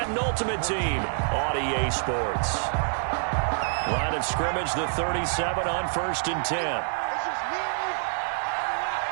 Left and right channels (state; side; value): silent; left; digital silence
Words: Ultimate Team on EA Sports. Line of scrimmage, the 37 on 1st and 10. It's just me and you.